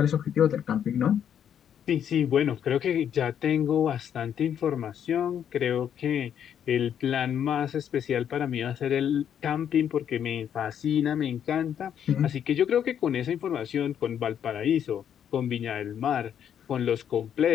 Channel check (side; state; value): right; quieter; 9.0 dB